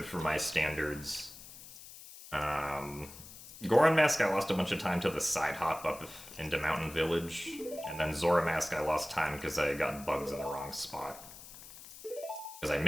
for my standards. Goron Mask, I lost a bunch of time to the side hop up into Mountain Village. And then Zora Mask, I lost time because I got bugs in the wrong spot. Because I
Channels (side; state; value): left; noise; hiss, 16 dB below the sound